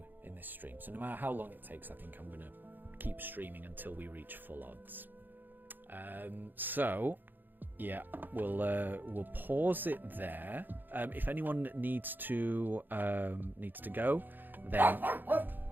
in this stream. So no matter how long it takes, I think I'm going to keep streaming until we reach full odds. So Yeah, we'll pause it there. If anyone needs to go, then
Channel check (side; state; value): left; late; 0.090 ms